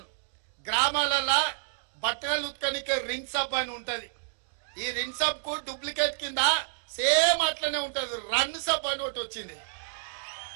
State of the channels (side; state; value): left; silent; digital silence